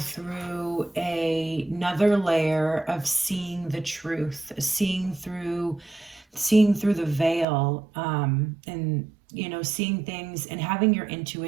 another layer of seeing the truth, seeing through the veil, and, you know, seeing things and having your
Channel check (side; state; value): left; drops out; at 7.5 s